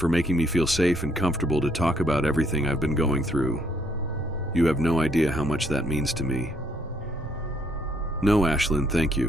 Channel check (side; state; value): both; normal; correlation 0.69